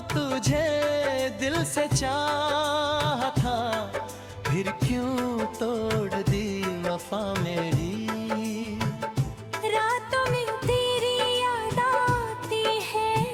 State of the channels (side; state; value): both; identical; correlation 1.00